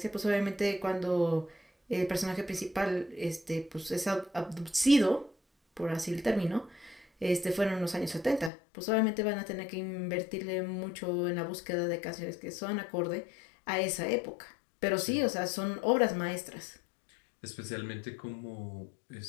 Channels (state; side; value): drops out; right; at 8.5 s